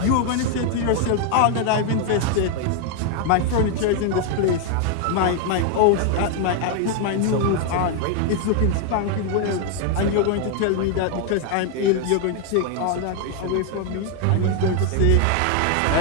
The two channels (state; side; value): different; both; correlation 0.00